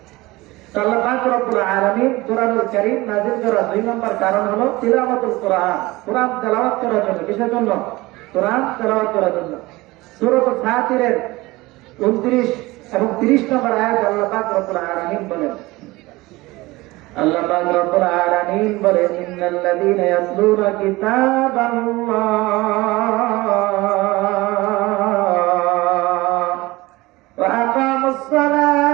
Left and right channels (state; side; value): quieter; left; 20.6 dB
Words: আল্লাহ পাক রব্বুল আলামিন কোরআনুল কারীম নাযিল করার 2 নম্বর কারণ হলো তিলাওয়াতুল কোরআন। কোরআন তেলাওয়াত করার জন্য। কিসের জন্য? কোরআন তেলাওয়াত করার জন্য। সূরা ফাতিরের 29 এবং 30 নম্বর আয়াত আল্লাহ পাক রব্বুল আলামিন বলেন, আল্লাহ পাক রব্বুল আলামিন বলেন, ইন্নাল্লাযীনা ইয়াতলুনা কিতাবাল্লাহ ওয়া আকামুস সালাহ